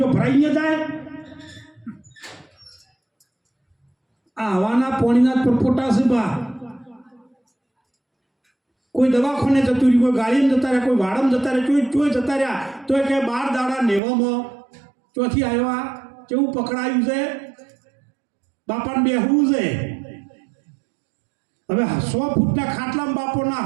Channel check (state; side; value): drops out; left; at 14.0 s